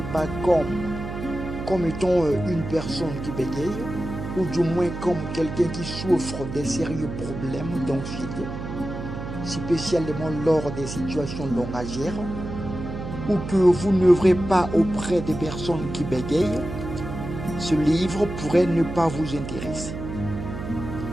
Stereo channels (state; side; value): noise; right; hum, 7 dB below the sound